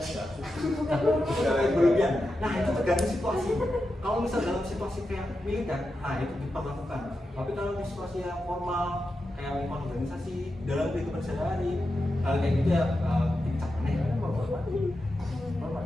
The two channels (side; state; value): both; normal; correlation 0.89